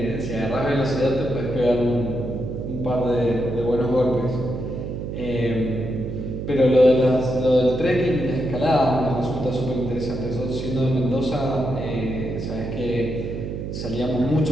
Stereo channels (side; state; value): right; noise; hum, 6 dB below the sound